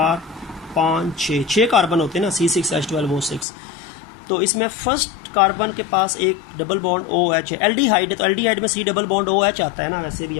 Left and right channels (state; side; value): drops out; right; at 3.5 s